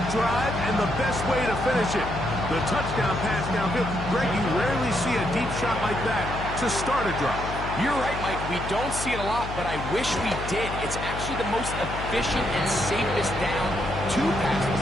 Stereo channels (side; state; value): left; noise; hum, 7 dB below the sound